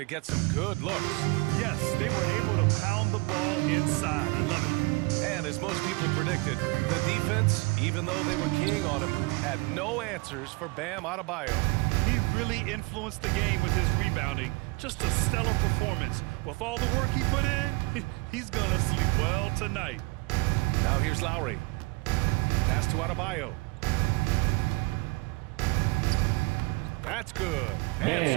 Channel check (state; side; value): quieter; left; 26.4 dB